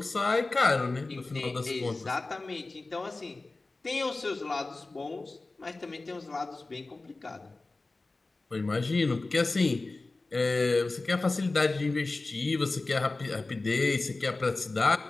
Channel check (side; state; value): right; quieter; 3.3 dB